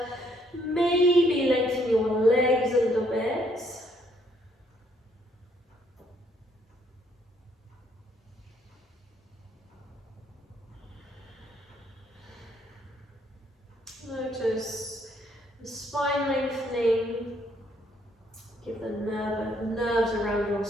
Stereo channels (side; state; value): both; normal; correlation 0.69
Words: Maybe lengthen your legs a little bit. Notice the spine lengthening. Give the nerves around your